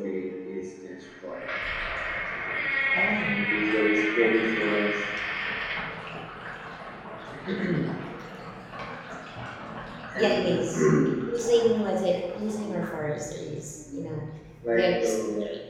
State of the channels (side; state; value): both; identical; correlation 1.00